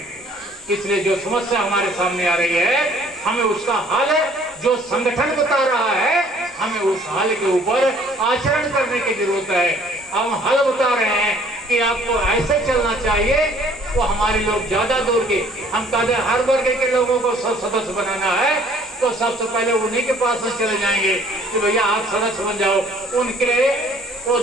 इसलिए जो समस्या हमारे सामने आ रही है, हमें उसका हल जो संगठन बता रहा है, हमें उस हल के ऊपर आचरण करने की जरूरत है। हम हल बता रहे हैं कि आपको ऐसे चलना चाहिए, वो हमारे लोग ज्यादा दूर के, हम कहते हैं हर वर्ग के लोगों को सब सदस्य बनाना है, तो सबसे पहले उन्हीं के पास में चले जाएंगे कि भैया आप सदस्य बन जाओ। उनके वो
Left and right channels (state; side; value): normal; both; correlation 0.57